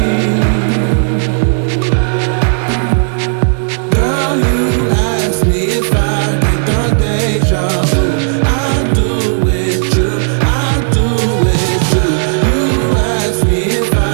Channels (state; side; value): silent; left; digital silence